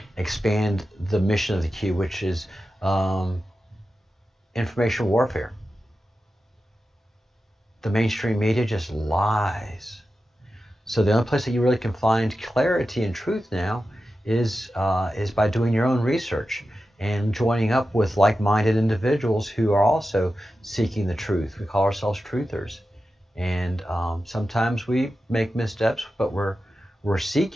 expand the mission of the Q, which is information warfare. The mainstream media just lies. So the only place that you really can find clarity and truth now is by doing your own research and joining up with like-minded individuals who are also seeking the truth. We call ourselves truthers, and sometimes we make missteps, but we're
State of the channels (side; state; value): both; normal; correlation 0.92